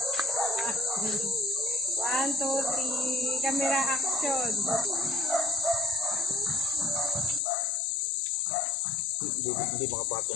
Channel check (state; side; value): drops out; right; at 7.4 s